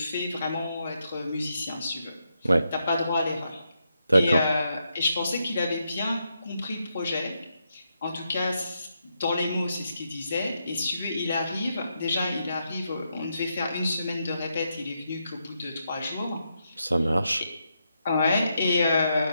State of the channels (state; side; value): inverted; both; correlation -0.82